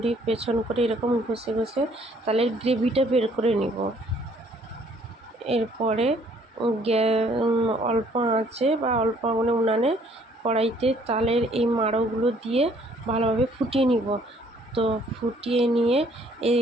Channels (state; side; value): normal; both; correlation 0.62